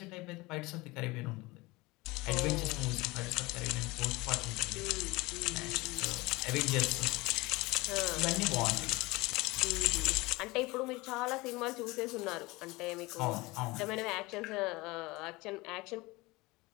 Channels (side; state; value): right; quieter; 22.4 dB